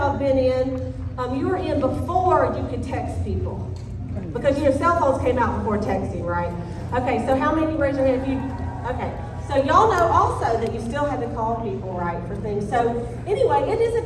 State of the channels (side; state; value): both; identical; correlation 1.00